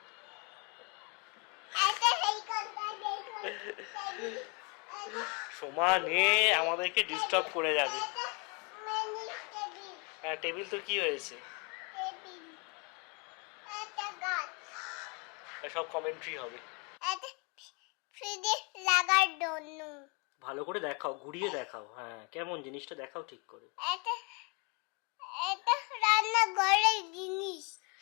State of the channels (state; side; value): quieter; right; 31.6 dB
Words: সমানে আমাদেরকে ডিস্টার্ব করে যাবে। হ্যাঁ, টেবিল তো কি হয়েছে, সব কমেন্ট্রি হবে। ভালো করে দেখাও, ঘুরিয়ে দেখাও। হ্যাঁ, কেমন জিনিসটা দেখাও ঠিক করে।